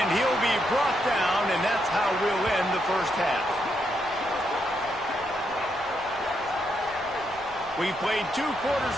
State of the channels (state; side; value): noise; left; rumble, 22 dB below the sound